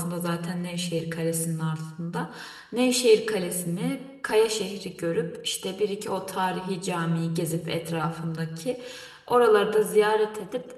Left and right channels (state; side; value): identical; both; correlation 1.00